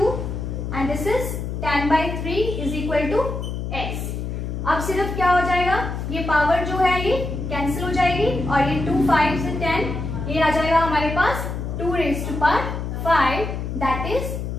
and this is 10/3 is equal to x। अब सिर्फ क्या हो जाएगा, ये पावर जो है ये कैंसिल हो जाएगी और ये 2 5 से 10 ये आ जाएगा हमारे पास 2 raised to power 5 that is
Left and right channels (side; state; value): left; noise; hum, 4 dB below the sound